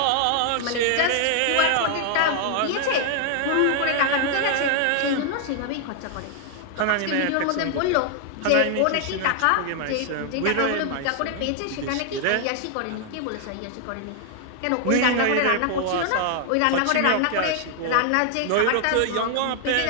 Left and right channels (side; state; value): both; different; correlation 0.00